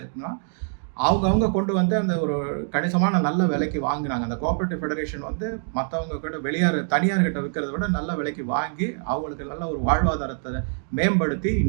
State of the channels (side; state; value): left; silent; digital silence